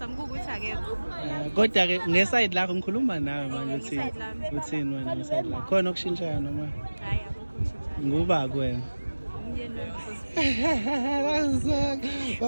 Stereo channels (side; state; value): both; inverted; correlation -1.00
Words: kuwukuthi akekho. Kodwa-ke ngesayidi lakho ngikhuluma nawe manje uthini wena ngesayidi lakho? Khona okushintshayo noma? Hayi akukho kushintshayo. Nguba kuwena? Umyeni wami.